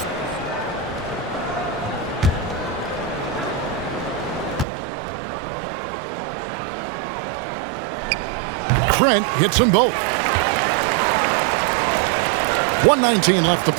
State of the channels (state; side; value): drops out; left; at 4.7 s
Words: Trent hits them both. 1:19 left to